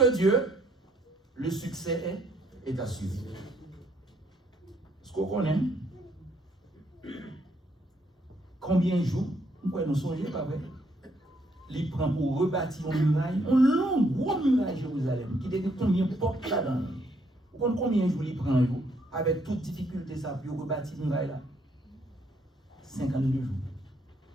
Dieu, le succès est assuré. Ce qu'on connaît, combien de jours, nous songeons, pas vrai? Il prend pour rebâtir une muraille, une longue, grosse muraille Jérusalem, qui était combien de portes là-dedans. Vous comprenez combien de jours il prend, avec toute difficulté, ça, pour rebâtir une muraille là? 52 jours.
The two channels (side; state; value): both; normal; correlation 0.70